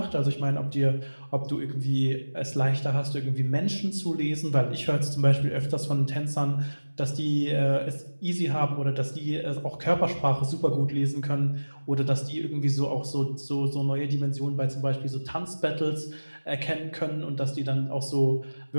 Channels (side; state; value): both; inverted; correlation -1.00